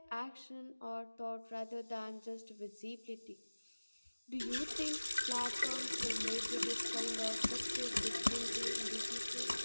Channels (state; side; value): inverted; both; correlation -1.00